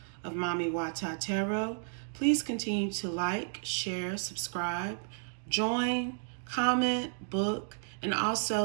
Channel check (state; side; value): silent; left; digital silence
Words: of Mami Wata Tarot. Please continue to like, share, subscribe, join, comment, book, and